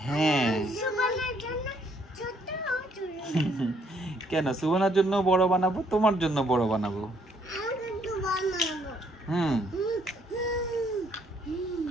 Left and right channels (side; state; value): both; normal; correlation 0.67